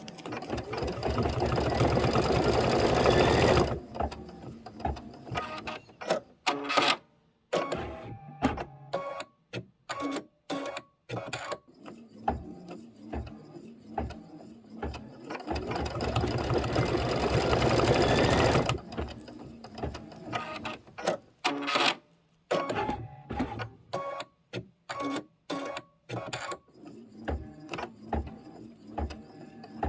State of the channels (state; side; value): identical; both; correlation 1.00